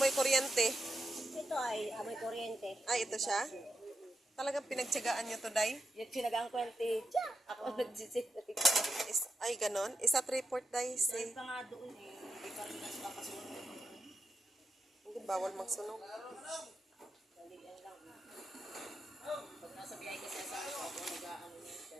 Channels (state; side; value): normal; both; correlation 0.87